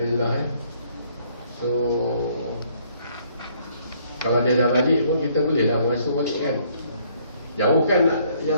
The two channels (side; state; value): both; inverted; correlation -0.65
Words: ya. So kalau dia dah balik pun kita boleh dah mengasuh balik kan. Jauh kan yang